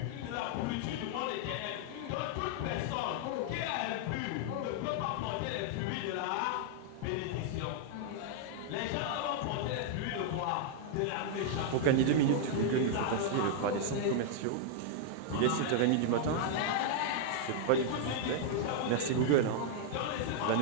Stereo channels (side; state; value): both; different; correlation 0.00